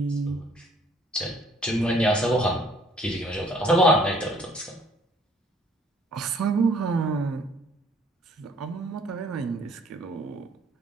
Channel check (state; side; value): normal; both; correlation 0.59